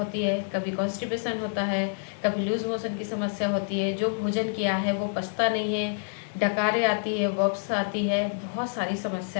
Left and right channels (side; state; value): right; silent; digital silence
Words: है, कभी कॉन्स्टिपेशन होता है, कभी लूज मोशन की समस्या होती है, जो भोजन किया है वो पचता नहीं है, डकारें आती है, वॉप्स आती है, बहुत सारी